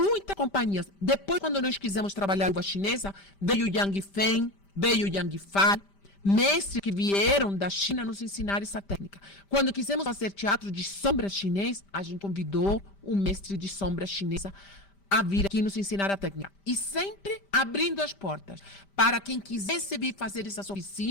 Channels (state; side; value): late; right; 5.1 ms